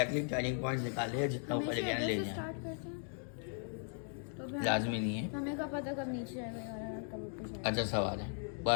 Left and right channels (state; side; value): silent; right; 53 dB below the other